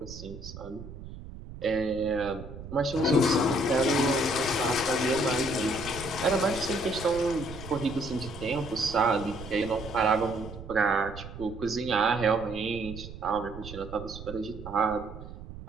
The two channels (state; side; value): noise; right; rumble, 13 dB below the sound